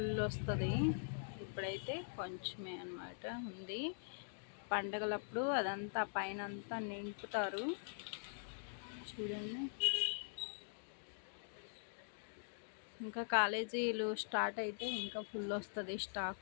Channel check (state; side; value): silent; right; digital silence